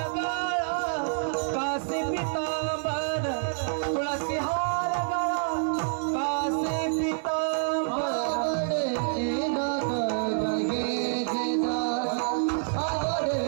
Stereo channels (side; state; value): left; silent; 60 dB below the other